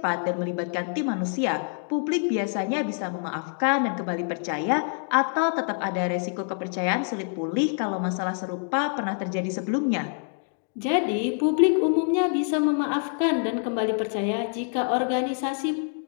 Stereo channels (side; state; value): right; silent; 56 dB below the other